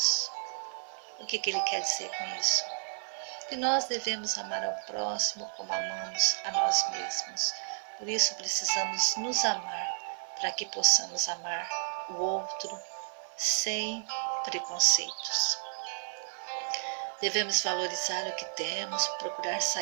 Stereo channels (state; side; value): silent; left; 56 dB below the other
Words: O que ele quer dizer com isso? Que nós devemos amar ao próximo como amamos a nós mesmos. Por isso precisamos nos amar, para que possamos amar o outro sem preconceitos. Devemos valorizar o que temos, procurar